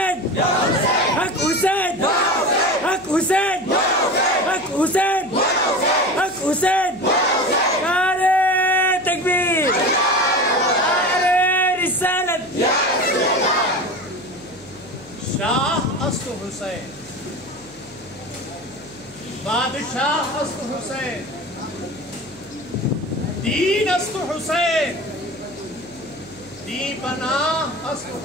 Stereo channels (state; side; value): noise; right; hum, 26 dB below the sound